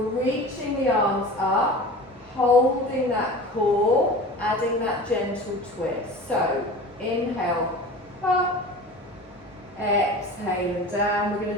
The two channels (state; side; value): normal; both; correlation 0.36